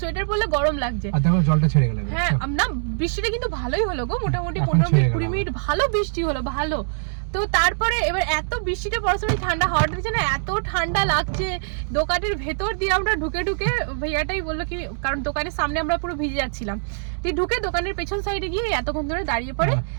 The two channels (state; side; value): silent; left; 62 dB below the other